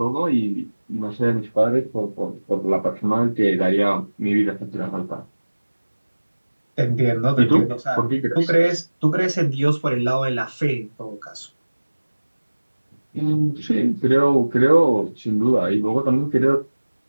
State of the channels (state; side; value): inverted; both; correlation -1.00